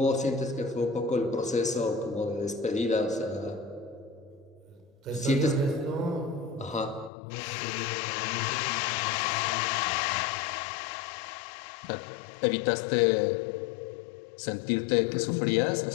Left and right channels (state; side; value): drops out; right; at 7.1 s